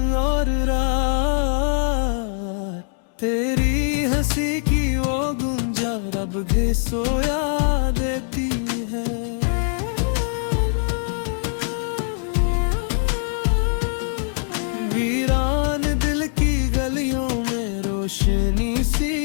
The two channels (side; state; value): right; silent; 64 dB below the other